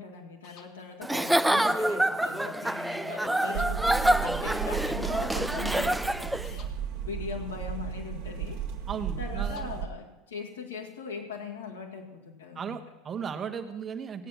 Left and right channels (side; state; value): both; normal; correlation 0.77